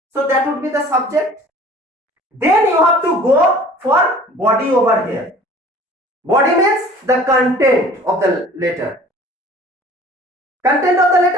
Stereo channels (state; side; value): normal; both; correlation 0.48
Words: So that would be the subject. Then you have to go for body over here. Body means the content of the letter. Content of the